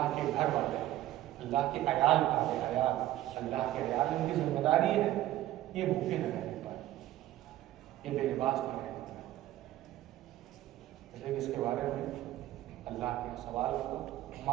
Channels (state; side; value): quieter; left; 14.5 dB